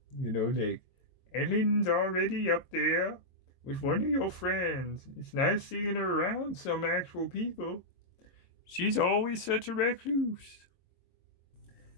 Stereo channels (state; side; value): late; right; 22 ms